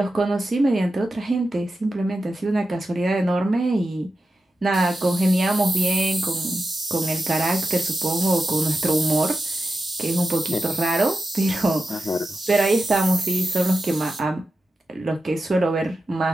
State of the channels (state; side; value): normal; both; correlation 0.91